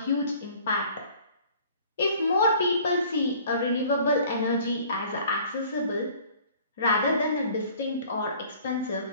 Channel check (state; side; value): inverted; both; correlation -0.52